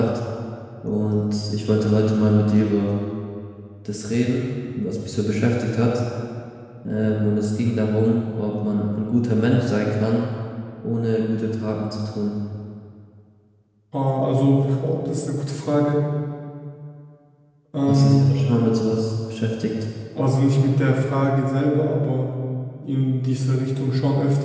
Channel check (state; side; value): identical; both; correlation 1.00